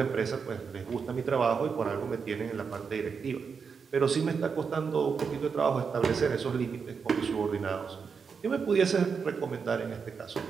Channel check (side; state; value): left; quieter; 5.8 dB